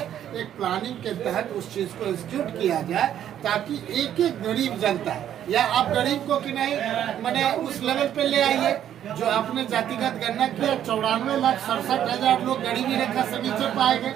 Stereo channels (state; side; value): quieter; left; 10.6 dB